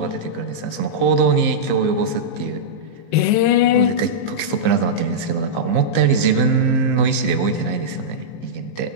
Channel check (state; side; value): late; right; 18 ms